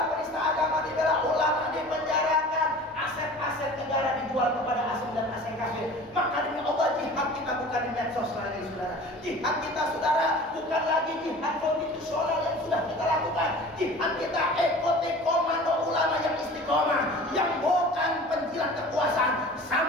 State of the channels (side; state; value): both; normal; correlation 0.41